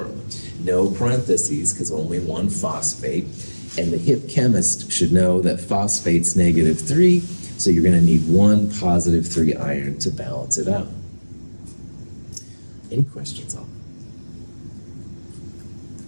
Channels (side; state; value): both; inverted; correlation -1.00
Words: No parentheses because only one phosphate. And the hip chemist should know that phosphate's -3, so you're going to need one +3 iron to balance it out. Any questions on